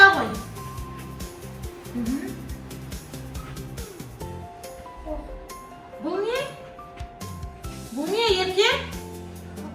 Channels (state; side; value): identical; both; correlation 1.00